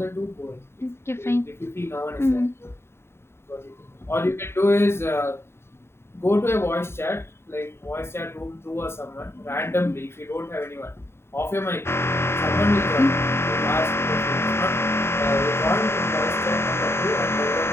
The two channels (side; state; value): right; late; 0.12 ms